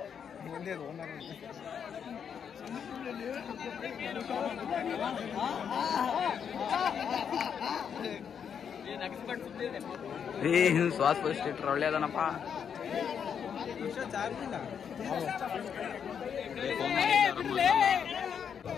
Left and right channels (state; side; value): quieter; right; 7.5 dB